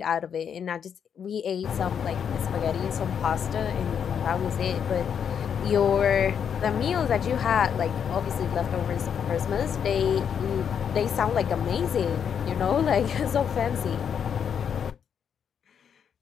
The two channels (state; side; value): quieter; right; 7.7 dB